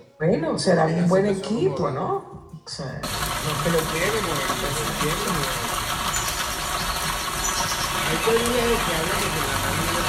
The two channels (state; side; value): identical; both; correlation 1.00